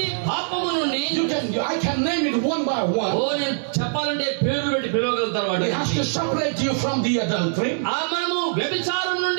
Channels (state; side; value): silent; left; 56 dB below the other